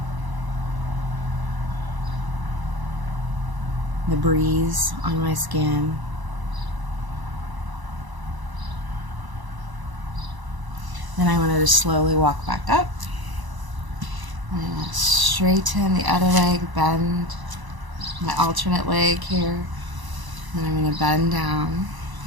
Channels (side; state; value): left; late; 1.0 ms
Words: The breeze on my skin. Then I'm going to just slowly walk back up. I'm going to straighten the other leg, bend my alternate leg here. And I'm going to bend down,